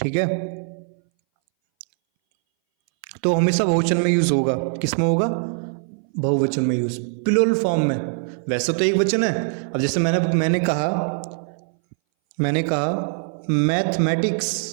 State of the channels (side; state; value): left; silent; 61 dB below the other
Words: है, तो हमेशा बहुवचन में यूज होगा। किस में होगा? बहुवचन में यूज, प्लूरल फॉर्म में। वैसे तो एक वचन है। अब जैसे मैंने कहा